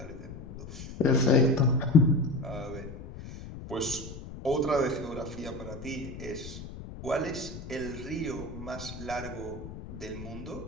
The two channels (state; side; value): noise; left; rumble, 12 dB below the sound